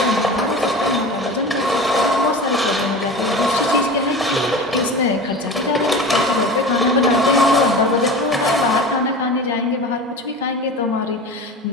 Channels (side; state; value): both; normal; correlation 0.33